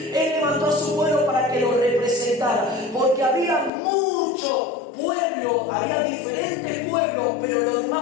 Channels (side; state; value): right; drops out; at 3.7 s